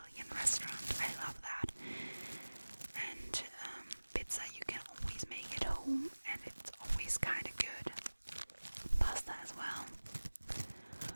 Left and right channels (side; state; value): both; inverted; correlation -1.00